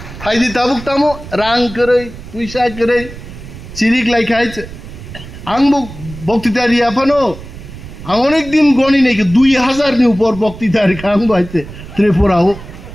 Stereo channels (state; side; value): noise; right; rumble, 14 dB below the sound